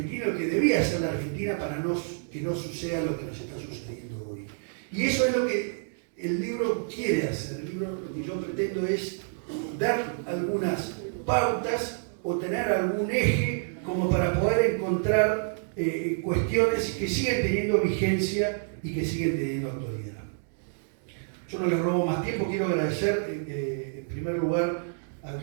lo que debía hacer la Argentina para que no suceda lo que nos está sucediendo hoy. Y eso es lo que el libro quiere hacer. El libro, lo que yo pretendo es dar algunas pautas o tener algún eje como para poder encontrar cuestiones que siguen teniendo vigencia y que siguen teniendo actualidad. Yo no les robo más tiempo, quiero agradecer en primer lugar a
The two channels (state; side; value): silent; left; digital silence